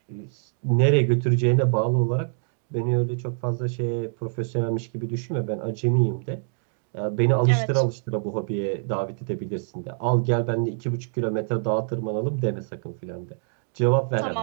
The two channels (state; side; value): silent; left; digital silence